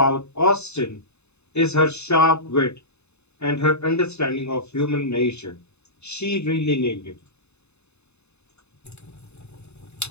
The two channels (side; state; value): right; late; 0.81 ms